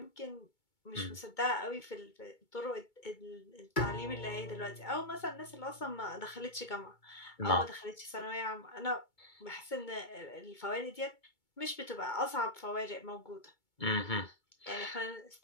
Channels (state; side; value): late; right; 2.2 ms